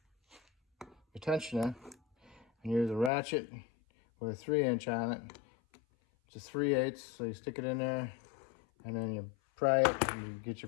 your tensioner, and use a ratchet with a 3" on it. It's a 3/8, so you stick it in there, and then you pry it, and you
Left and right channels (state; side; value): drops out; right; at 3.1 s